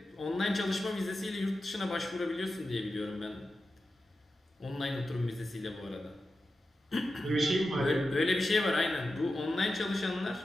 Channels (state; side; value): normal; both; correlation 0.91